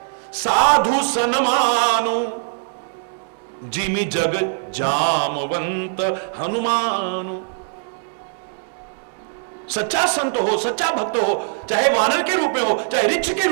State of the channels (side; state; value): left; silent; digital silence